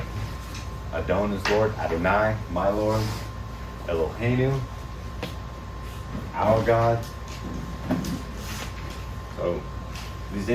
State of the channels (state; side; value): identical; both; correlation 1.00